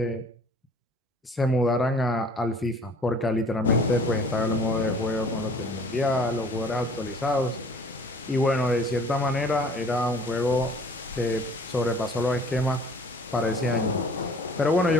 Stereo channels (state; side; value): normal; both; correlation 0.51